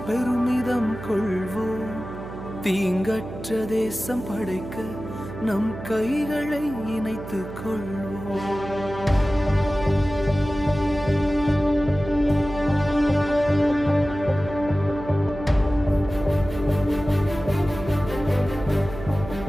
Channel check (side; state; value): right; noise; hum, 11 dB below the sound